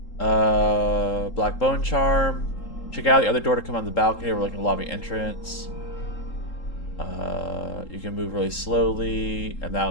Black Bone Charm. Check out the other door to come on the balcony overlooking the lobby entrance. You can move really slowly, and that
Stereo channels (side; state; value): right; late; 3.8 ms